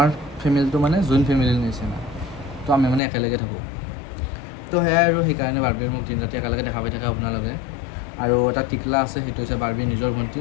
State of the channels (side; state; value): right; drops out; at 3.0 s